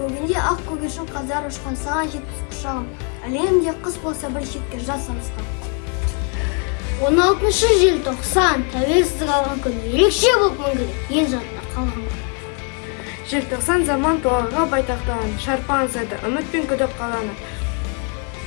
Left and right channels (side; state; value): right; quieter; 38.0 dB